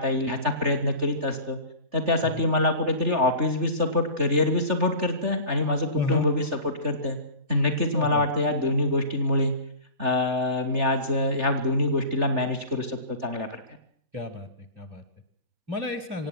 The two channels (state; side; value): late; left; 3.4 ms